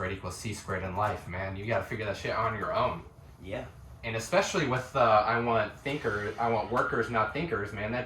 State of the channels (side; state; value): both; identical; correlation 1.00